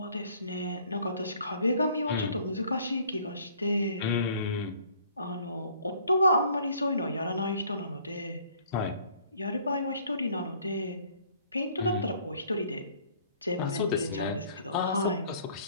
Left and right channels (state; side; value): inverted; both; correlation -0.57